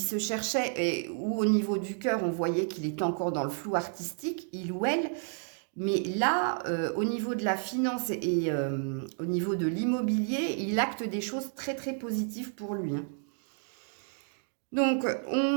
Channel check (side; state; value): left; silent; 57 dB below the other